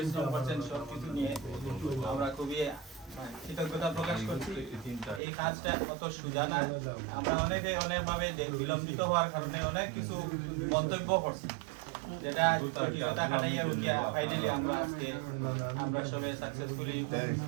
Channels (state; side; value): drops out; left; at 5.2 s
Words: করছেন সবকিছু নিয়ে। আমরা খুবই কৃতজ্ঞতা প্রকাশ করছি। এই কাজটা অত সোজা না, আমরা অনেকভাবে বিলম্বিত হওয়ার কারণে অনেক কিছু মন্তব্য করছি, যেটা জটিলতা কাটাইয়া উঠিয়া ফাইনালি আমরা আজকে আমরা সবাই সাকসেসফুলি